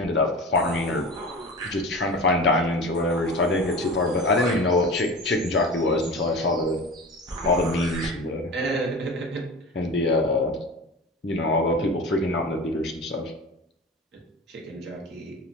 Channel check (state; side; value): normal; both; correlation 0.32